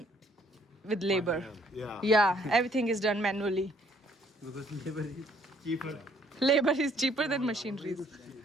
with labor yeah everything is done manually because labor is cheaper than machinery It's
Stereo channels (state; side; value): normal; both; correlation 0.64